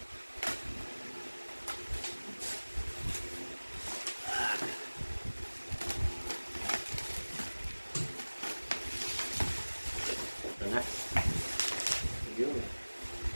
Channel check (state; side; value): inverted; both; correlation -1.00